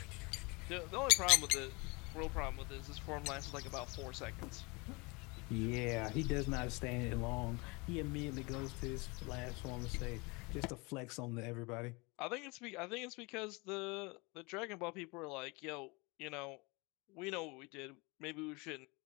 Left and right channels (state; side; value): quieter; right; 27.1 dB